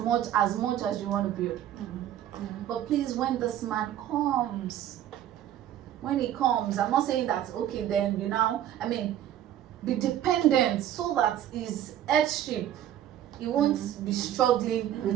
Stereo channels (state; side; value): quieter; left; 11.5 dB